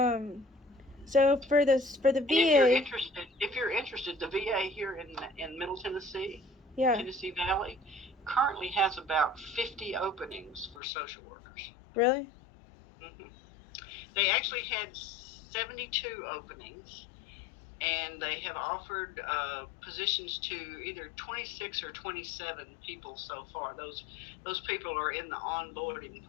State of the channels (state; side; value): drops out; right; at 10.8 s